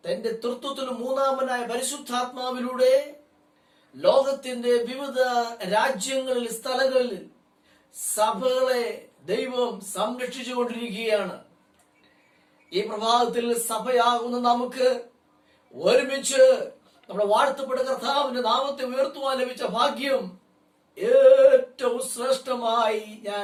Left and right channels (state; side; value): identical; both; correlation 1.00